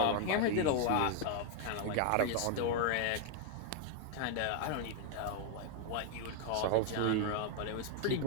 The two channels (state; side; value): different; both; correlation 0.00